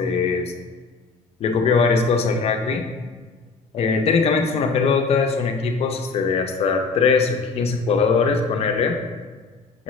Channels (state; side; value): quieter; right; 4.5 dB